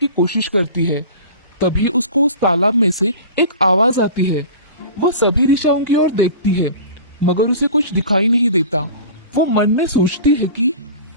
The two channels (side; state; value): both; inverted; correlation -0.38